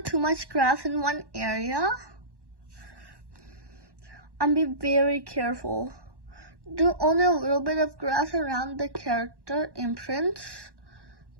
too much grass in one area. And be very careful. Do only a little bit of grass around the character imprints.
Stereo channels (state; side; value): late; left; 1.1 ms